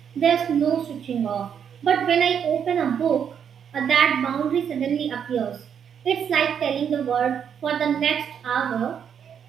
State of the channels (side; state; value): left; quieter; 8.0 dB